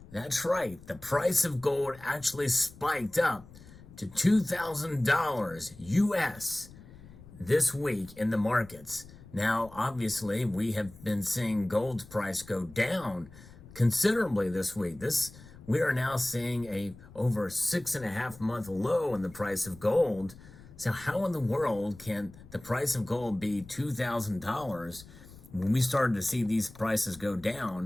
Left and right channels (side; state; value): left; noise; rumble, 20 dB below the sound